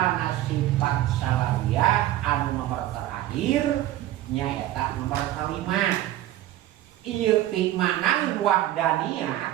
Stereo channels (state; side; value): quieter; left; 14.0 dB